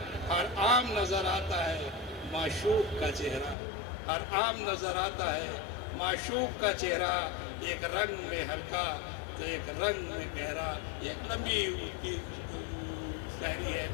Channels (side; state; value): right; drops out; at 3.6 s